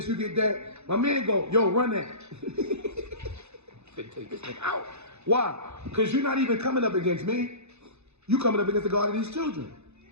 you get that. My man go, yo, run that. Take this thing out. Why? Because you're not even coming up against me. You coming up against the God of these children.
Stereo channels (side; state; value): left; late; 0.81 ms